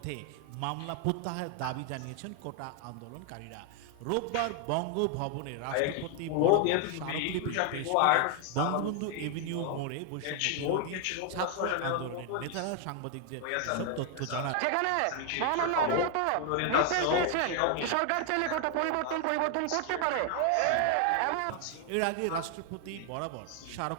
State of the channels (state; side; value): different; both; correlation 0.00